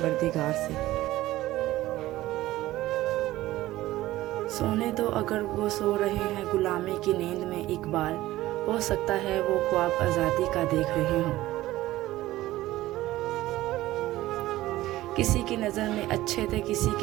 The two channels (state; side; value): quieter; left; 16.3 dB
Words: से। सोने दो अगर वो सो रहे हैं गुलामी की नींद में एक बार, हो सकता है वो ख्वाब आज़ादी का देख रहे हों। किसी की नज़र में अच्छे थे किसी